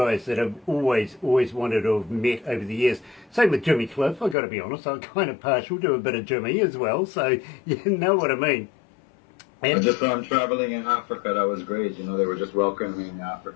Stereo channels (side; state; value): right; drops out; at 4.4 s